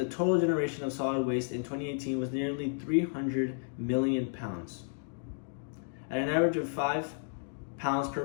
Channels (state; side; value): silent; right; digital silence